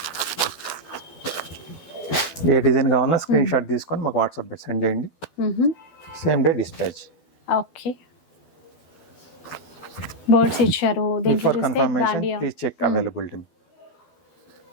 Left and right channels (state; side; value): late; right; 12 ms